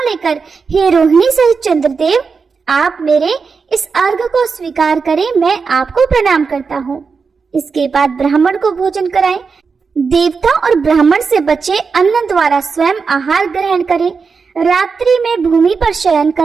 लेकर हे रोहिणी सहित चंद्रदेव, आप मेरे इस अर्घ को स्वीकार करें, मैं आपको प्रणाम करता हूँ। इसके बाद ब्राह्मण को भोजन कराएं। देवता और ब्राह्मण से बचे अन्न द्वारा स्वयं आहार ग्रहण करें। रात्रि में भूमि पर शयन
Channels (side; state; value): left; quieter; 5.2 dB